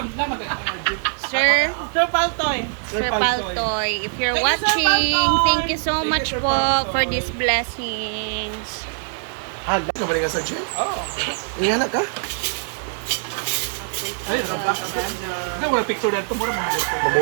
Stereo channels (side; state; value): left; silent; 60 dB below the other